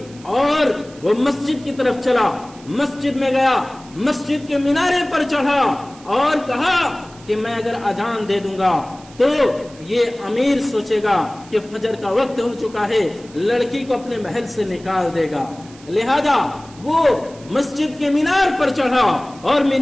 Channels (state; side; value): noise; right; hiss, 23 dB below the sound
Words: اور وہ مسجد کی طرف چلا، مسجد میں گیا، مسجد کے مینارے پر چڑھا اور کہا کہ میں اگر اذان دے دوں گا تو یہ امیر سوچے گا کہ فجر کا وقت ہو چکا ہے، لڑکی کو اپنے محل سے نکال دے گا۔ لہذا وہ مسجد کے مینار پر چڑھا اور